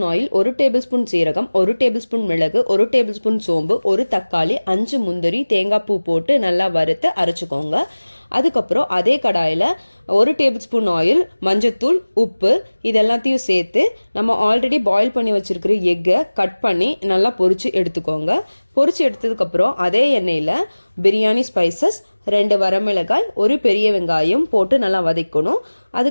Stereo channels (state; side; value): inverted; both; correlation -1.00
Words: oil, 1 table spoon சீரகம், 1 டேபிள் ஸ்பூன் மிளகு, 1 டேபிள் ஸ்பூன் சோம்பு, 1 தக்காளி, 5 முந்திரி, தேங்காய் பூ போட்டு நல்லா வறுத்து அரைச்சிக்கோங்க. அதுக்கப்புறம் அதே கடாயில் 1 டேபிள் ஸ்பூன் ஆயில், மஞ்சத்தூள், உப்பு இதெல்லாத்தையும் சேர்த்து நம்ம ஆல்ரெடி பாயில் பண்ணி வச்சுருக்கிற எக்கை கட் பண்ணி நல்லா பொரித்து எடுத்துக்கோங்க. பொரித்து எடுத்ததுக்கப்புறம் அதே எண்ணெயில் பிரியாணி ஸ்பைசஸ், 2 வரமிளகாய், 1 பெரிய வெங்காயம் போட்டு நல்லா வதக்கணும்.